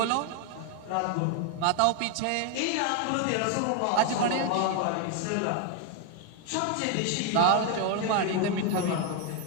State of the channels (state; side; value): different; both; correlation 0.00